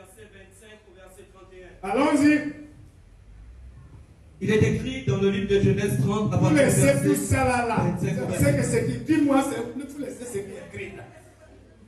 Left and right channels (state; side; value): identical; both; correlation 1.00